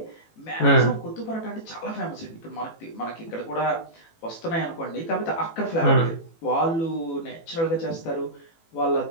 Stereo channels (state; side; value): late; right; 18 ms